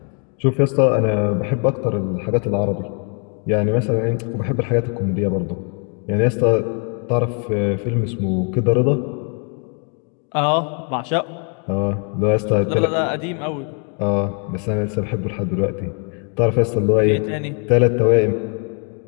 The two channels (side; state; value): right; quieter; 39.7 dB